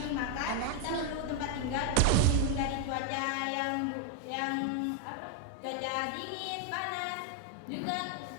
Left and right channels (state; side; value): different; both; correlation 0.01